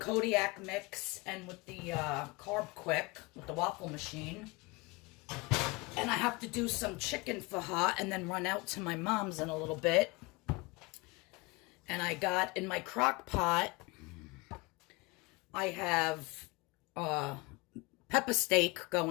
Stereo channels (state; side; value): quieter; right; 25.0 dB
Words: mix and with the Carb Quick, with the waffle machine. And I have to do some chicken for her and then run out to my mom's in a little bit. And I got in my crock pot, I have pepper steak